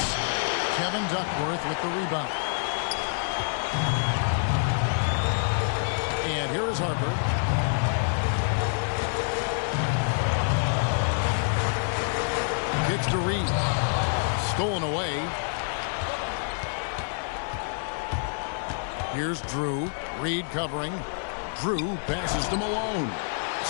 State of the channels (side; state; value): right; silent; digital silence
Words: Kevin Duckworth with the rebound. And here is Harper. Kicks to Reed. Stolen away. Here's Drew. Reed covering. Drew passes to Malone.